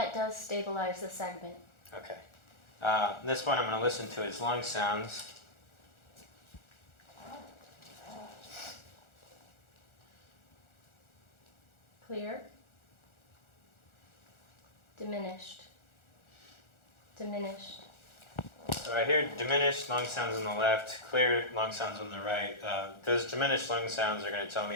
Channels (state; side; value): late; right; 1.4 ms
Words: does stabilize the segment. Okay. This one I'm going to listen to his lung sounds. Clear. Diminished. Diminished. So I hear diminished lung sounds on the left, clear lung sounds on the right. Those diminished lung sounds are going to tell me